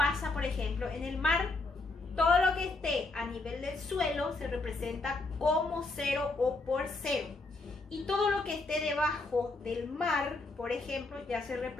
por ejemplo, en el mar. Todo lo que esté a nivel del suelo se representa como cero o por cero. Y todo lo que esté debajo del mar, por ejemplo, ya se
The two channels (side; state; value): right; quieter; 3.3 dB